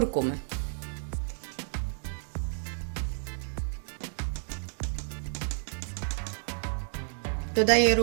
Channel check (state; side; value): silent; left; digital silence